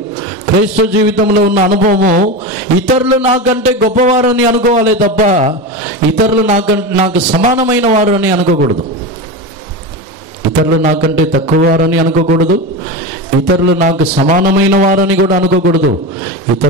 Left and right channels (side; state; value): both; normal; correlation 0.22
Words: క్రైస్తవ జీవితంలో ఉన్న అనుభవము ఇతరులు నాకంటే గొప్పవారని అనుకోవాలి తప్ప ఇతరులు నాకు సమానమైన వారు అని అనుకోకూడదు. ఇతరులు నాకంటే తక్కువ వారని అనుకోకూడదు. ఇతరులు నాకు సమానమైన వారని కూడా అనుకోకూడదు.